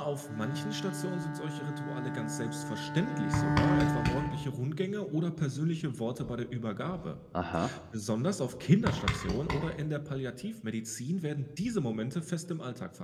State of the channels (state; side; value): identical; both; correlation 1.00